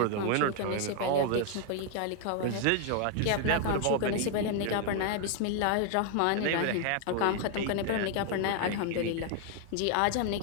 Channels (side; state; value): both; different; correlation 0.00